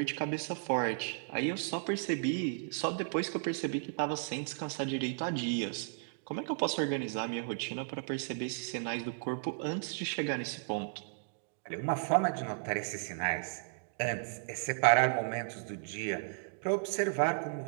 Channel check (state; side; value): silent; left; digital silence